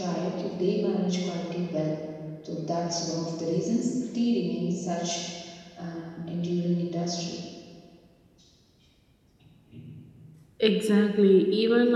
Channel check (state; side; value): identical; both; correlation 1.00